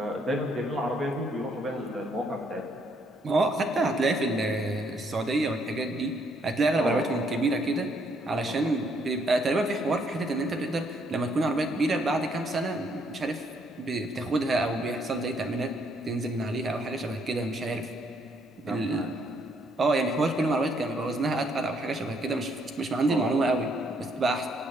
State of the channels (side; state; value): both; normal; correlation 0.70